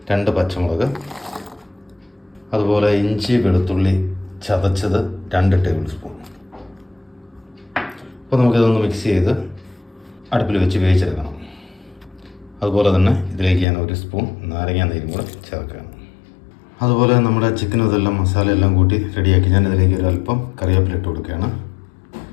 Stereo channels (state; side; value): drops out; right; at 13.7 s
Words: 2 പച്ചമുളക്, അതുപോലെ ഇഞ്ചി വെളുത്തുള്ളി ചതച്ചത് 2 ടേബിൾ സ്പൂൺ. അപ്പോൾ നമുക്കിതൊന്ന് മിക്സ് ചെയ്ത് അടുപ്പിൽ വെച്ച് വേവിച്ചെടുക്കണം. അതുപോലെ തന്നെ ഇതിലേക്ക് ഞാൻ 1 സ്പൂൺ നാരങ്ങ നീരും കൂടെ ചേർക്കുകയാണ്. അതുപോലെ നമ്മുടെ ചിക്കനും ഇതെല്ലാം മസാലയെല്ലാം കൂട്ടി റെഡിയാക്കി ഞാൻ ഇതിലേക്ക് ഒരു അല്പം കറിവേപ്പില ഇട്ട് കൊടുക്കുകയാണ്.